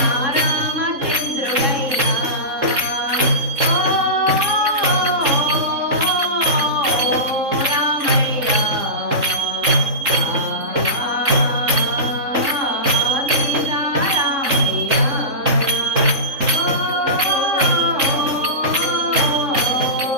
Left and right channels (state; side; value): late; left; 3.7 ms